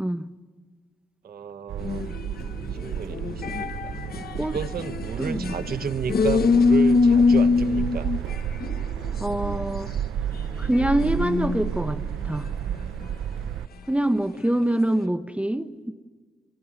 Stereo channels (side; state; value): both; normal; correlation 0.79